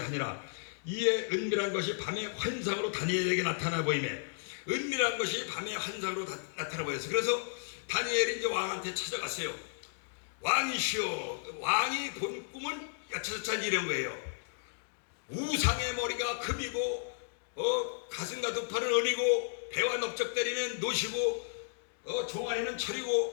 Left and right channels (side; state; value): right; silent; digital silence